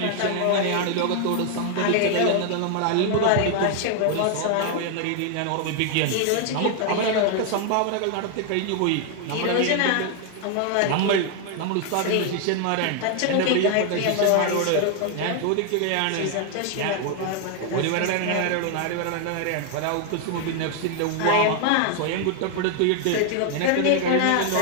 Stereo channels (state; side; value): different; both; correlation 0.00